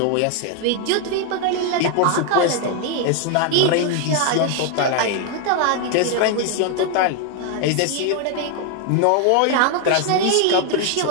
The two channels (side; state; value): both; different; correlation 0.01